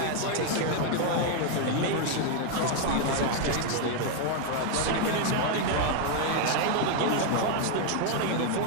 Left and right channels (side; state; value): both; different; correlation 0.00